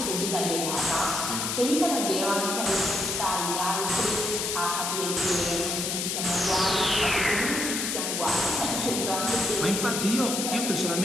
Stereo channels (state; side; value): noise; left; hiss, 1 dB below the sound